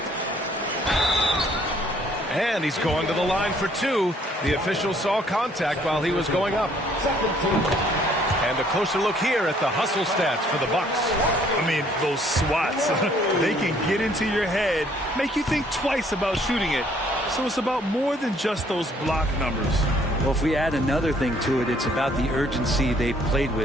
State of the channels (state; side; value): normal; both; correlation 0.62